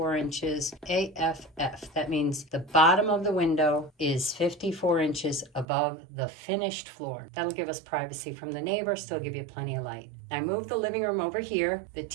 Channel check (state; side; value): drops out; left; at 5.7 s